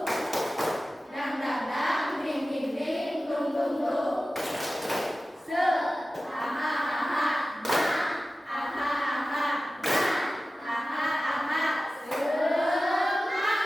dang dang dang, ding ding ding.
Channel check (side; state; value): both; normal; correlation 0.95